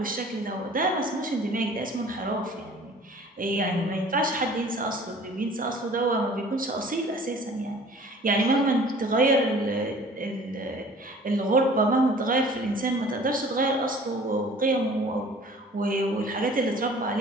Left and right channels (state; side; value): normal; both; correlation 0.49